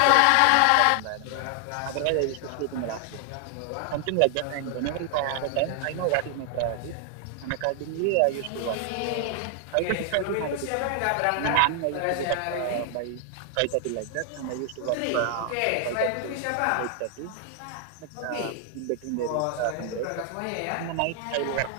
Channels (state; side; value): different; both; correlation 0.00